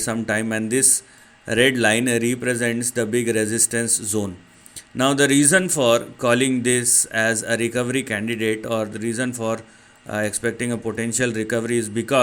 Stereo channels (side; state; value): both; identical; correlation 1.00